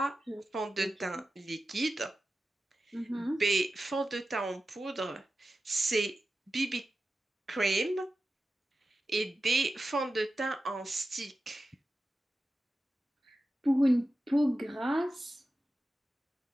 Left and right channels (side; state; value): both; normal; correlation 0.93